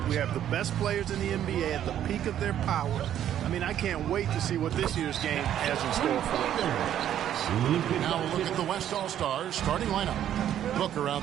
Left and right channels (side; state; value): left; quieter; 10.8 dB